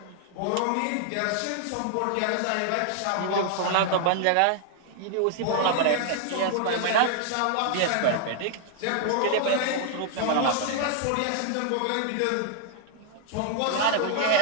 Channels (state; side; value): different; both; correlation 0.00